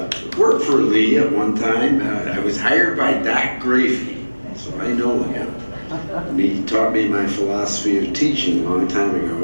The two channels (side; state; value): both; inverted; correlation -1.00